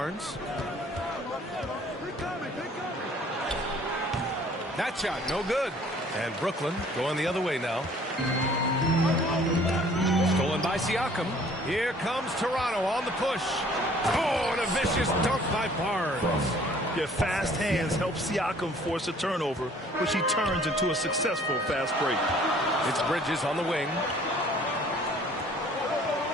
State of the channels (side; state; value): both; normal; correlation 0.55